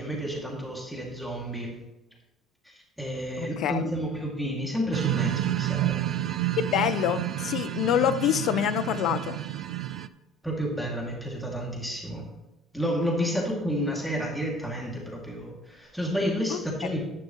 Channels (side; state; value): both; normal; correlation 0.43